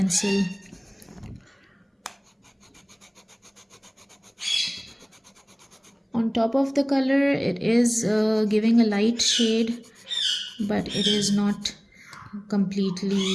on top of the color, it is giving a light shade, but it is not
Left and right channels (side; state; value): both; identical; correlation 1.00